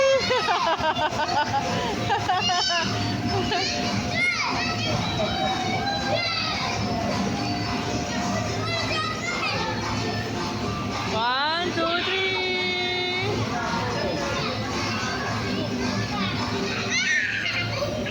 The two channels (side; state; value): both; identical; correlation 1.00